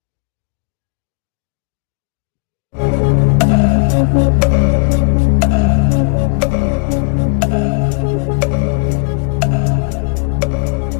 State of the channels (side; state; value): right; quieter; 39.4 dB